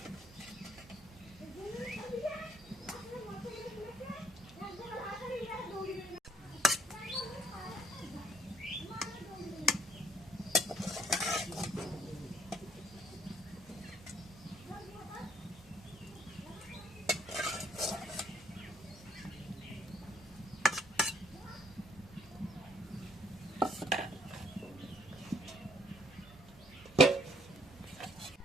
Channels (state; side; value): normal; both; correlation 0.65